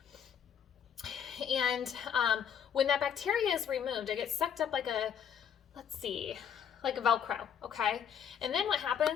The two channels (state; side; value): quieter; right; 8.3 dB